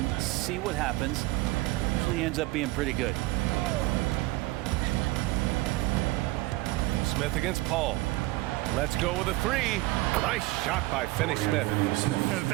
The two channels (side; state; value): left; quieter; 20.1 dB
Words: see what happens. Usually ends up being pretty good. Smith against Paul. Let's go with a 3. Nice shot by Finney-Smith.